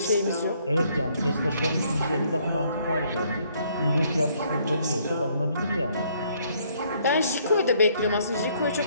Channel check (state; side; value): inverted; both; correlation -0.66